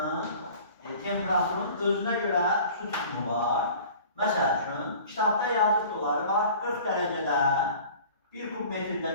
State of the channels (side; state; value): both; inverted; correlation -0.45